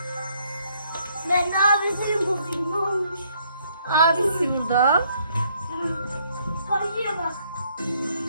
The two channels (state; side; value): inverted; both; correlation -0.68